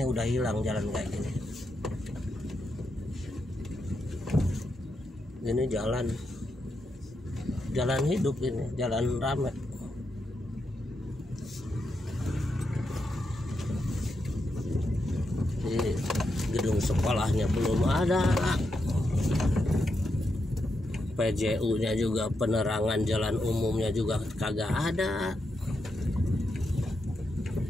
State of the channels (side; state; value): both; normal; correlation 0.84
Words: udah hilang jalan kayak gini. Ini jalan hidup, ini jalan rame. Ini gedung sekolahnya belum ada, PJU-nya juga, penerangan jalan umumnya juga kagak ada.